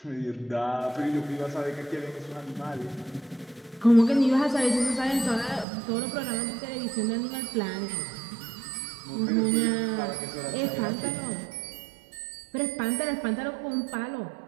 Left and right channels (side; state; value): left; drops out; at 5.7 s